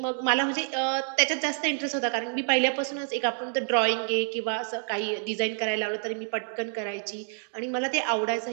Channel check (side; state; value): left; silent; 59 dB below the other